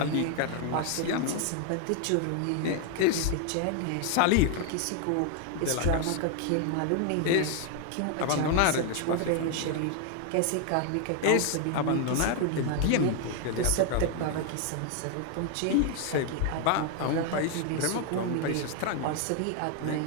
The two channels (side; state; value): both; different; correlation 0.00